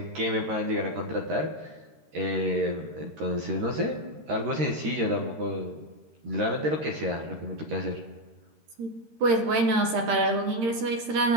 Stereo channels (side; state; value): left; late; 13 ms